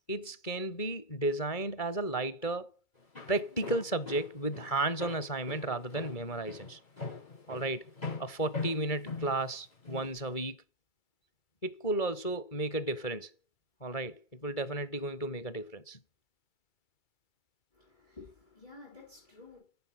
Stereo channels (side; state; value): right; late; 2.3 ms